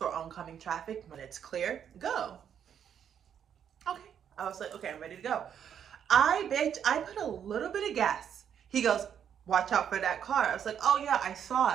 oncoming traffic. When it's clear, go. Okay, I was like, okay, I'm ready to go. I put a little bit of gas. He goes, watch out for that car. I was like, oh yeah, I saw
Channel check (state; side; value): quieter; left; 8.6 dB